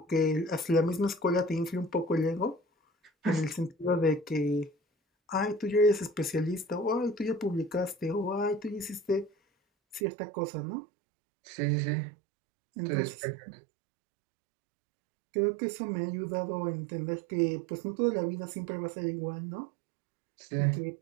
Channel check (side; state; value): left; drops out; at 10.0 s